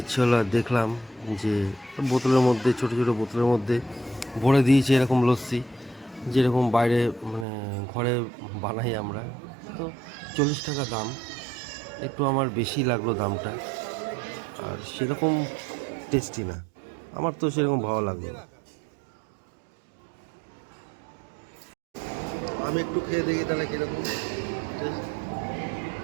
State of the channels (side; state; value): left; drops out; at 7.5 s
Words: হলো, আর দেখলাম যে বোতলের মধ্যে, ছোটো ছোটো বোতলের মধ্যে ভরে দিয়েছে এরকম লস্যি, যেরকম বাইরে মানে ঘরে বানাই আমরা। তো 40 টাকা দাম, একটু আমার বেশি লাগলো দামটা, আর সেরকম টেস্টি না, আমার তো সেরকম ভালো লাগলো না। আমি একটু খেয়ে দেখি তাহলে কিরকম taste।